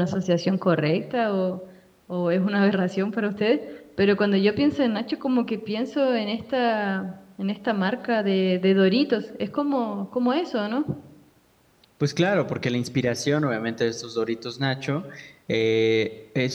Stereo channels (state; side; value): identical; both; correlation 1.00